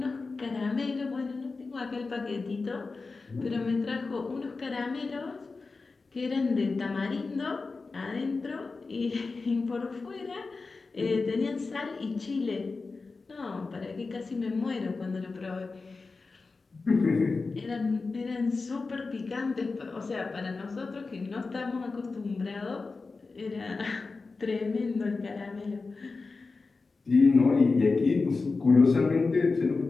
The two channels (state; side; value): quieter; right; 4.0 dB